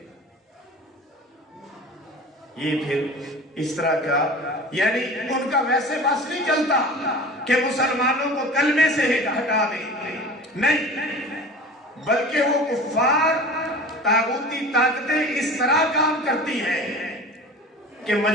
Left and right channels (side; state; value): both; normal; correlation 0.37